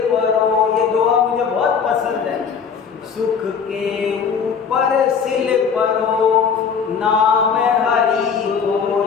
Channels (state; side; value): quieter; right; 6.4 dB